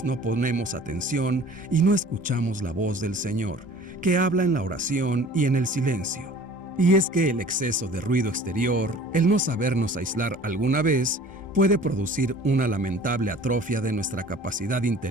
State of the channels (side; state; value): both; normal; correlation 0.47